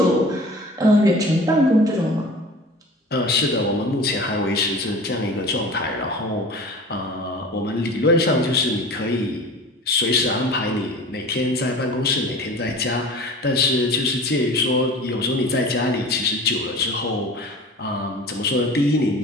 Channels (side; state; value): both; normal; correlation 0.39